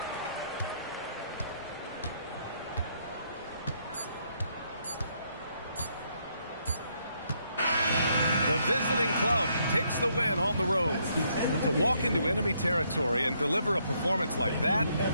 The The visiting club takes the win on the road. To walk into enemy territory and deliver a performance like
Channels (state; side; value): inverted; both; correlation -0.73